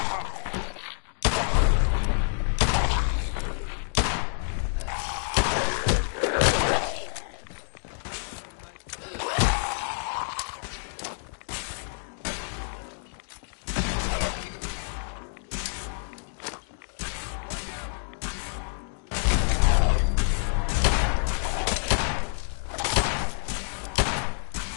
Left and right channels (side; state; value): right; silent; digital silence